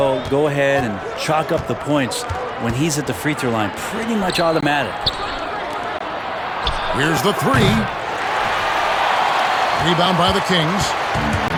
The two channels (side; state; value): both; identical; correlation 1.00